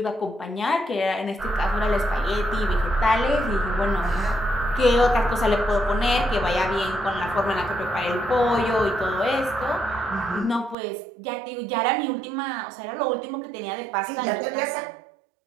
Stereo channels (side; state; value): left; drops out; at 10.8 s